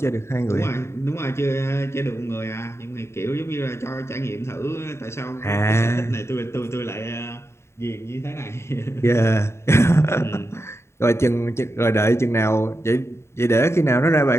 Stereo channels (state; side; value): late; right; 0.13 ms